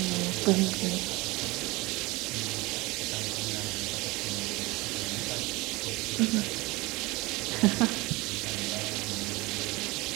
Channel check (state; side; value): quieter; left; 22.9 dB